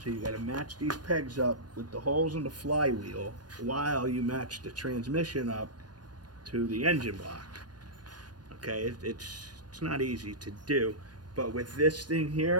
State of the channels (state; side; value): late; left; 0.69 ms